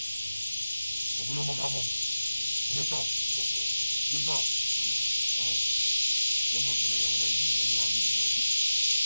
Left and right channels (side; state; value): both; inverted; correlation -0.94